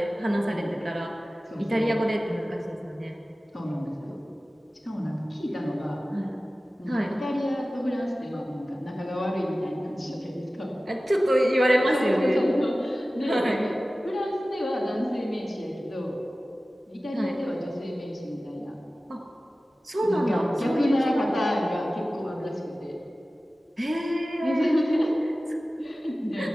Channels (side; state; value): both; normal; correlation 0.96